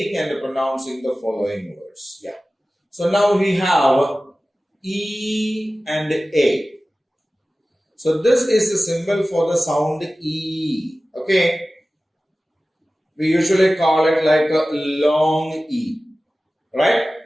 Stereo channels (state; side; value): normal; both; correlation 0.96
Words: and pronouncing the following words. Yeah. So now we have E and A. So this is the symbol for the sound E. Okay. We usually call it like a long E. Right?